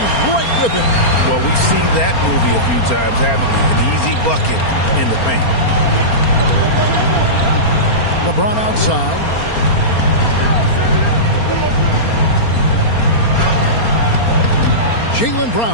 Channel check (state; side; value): late; right; 4.3 ms